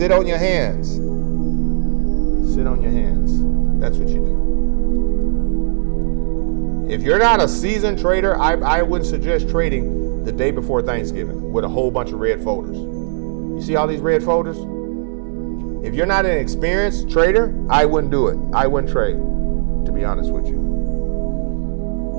on your hands. Sit on your hands. That's what you do. If you're not a seasoned trader, I wouldn't suggest trading the day before Thanksgiving with a whole bunch of red folders. You see all these red folders? If you're not an experienced trader, I wouldn't do it. I wouldn't trade, to be honest with you.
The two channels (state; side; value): silent; left; digital silence